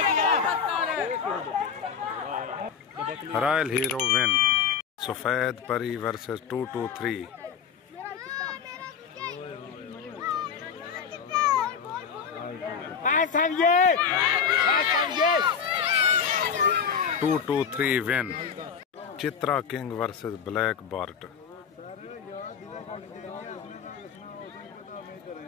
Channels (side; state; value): right; quieter; 7.0 dB